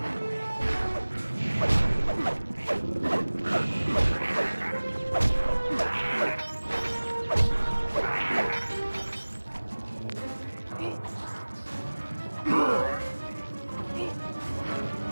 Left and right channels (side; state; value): both; inverted; correlation -1.00